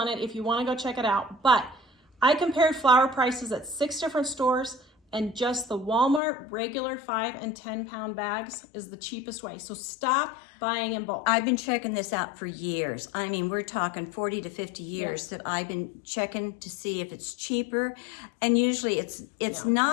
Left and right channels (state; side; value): drops out; right; at 6.2 s